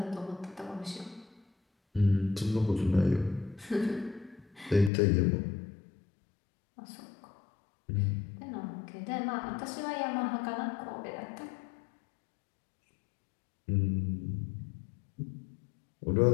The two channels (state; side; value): drops out; right; at 4.9 s